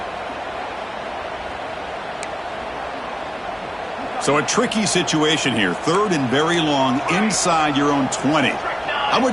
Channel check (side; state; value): both; identical; correlation 1.00